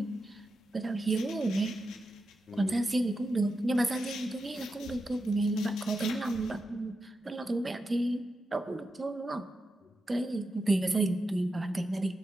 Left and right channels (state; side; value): normal; both; correlation 0.88